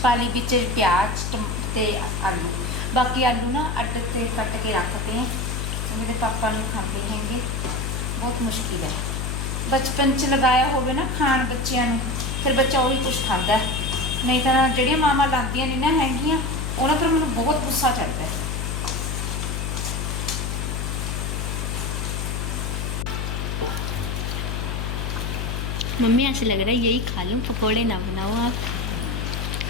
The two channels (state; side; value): noise; left; hum, 2 dB below the sound